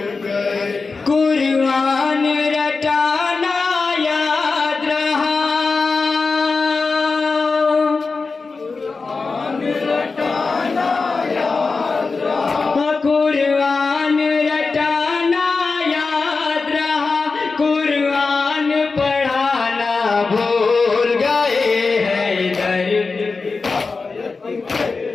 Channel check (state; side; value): quieter; right; 4.3 dB